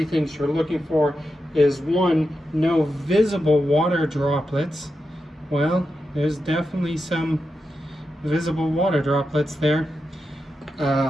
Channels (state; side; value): normal; both; correlation 0.88